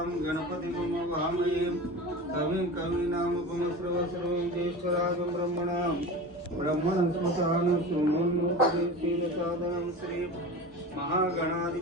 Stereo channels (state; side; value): normal; both; correlation 0.31